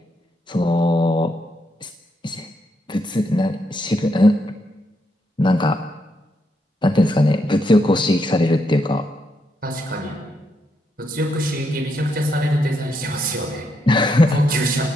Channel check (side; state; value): both; normal; correlation 0.79